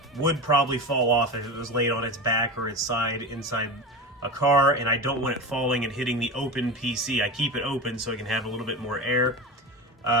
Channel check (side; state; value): both; normal; correlation 0.25